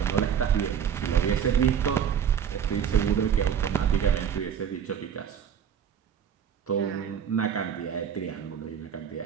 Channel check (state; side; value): quieter; left; 8.3 dB